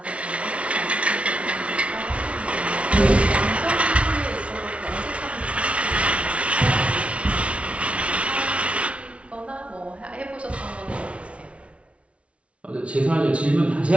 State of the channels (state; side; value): late; left; 0.062 ms